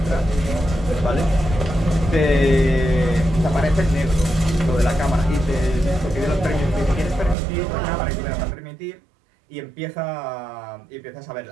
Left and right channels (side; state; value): left; drops out; at 7.4 s